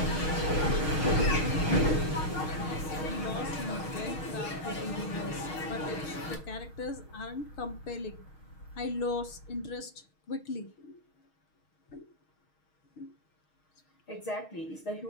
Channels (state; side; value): late; right; 6.4 ms